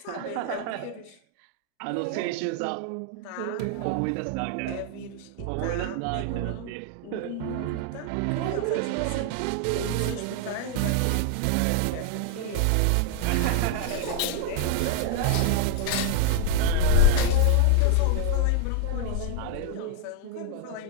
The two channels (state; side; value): different; both; correlation 0.00